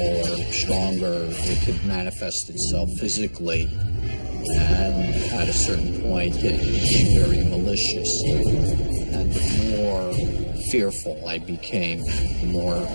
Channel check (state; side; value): inverted; both; correlation -1.00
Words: or stronger it could manifest itself physically. And at a certain point, it became very malicious. And the more fearful I became, the more